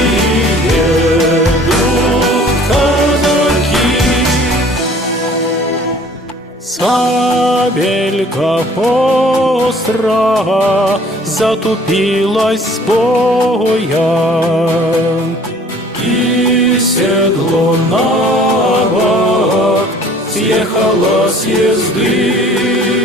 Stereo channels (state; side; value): normal; both; correlation 0.52